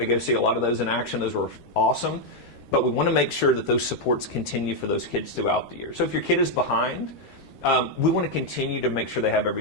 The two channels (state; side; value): late; right; 13 ms